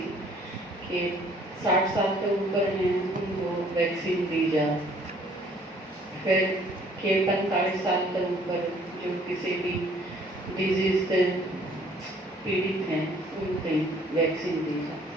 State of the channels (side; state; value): both; normal; correlation 0.59